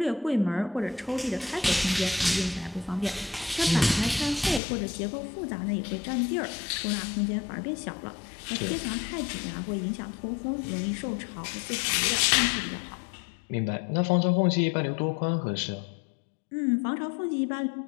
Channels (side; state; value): right; drops out; at 4.6 s